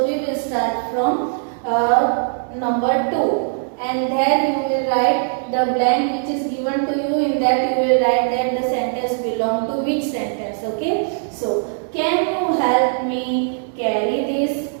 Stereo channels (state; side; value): silent; left; digital silence